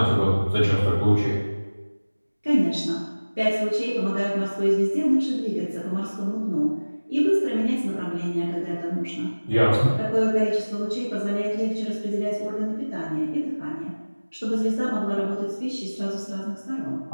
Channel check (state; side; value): inverted; both; correlation -1.00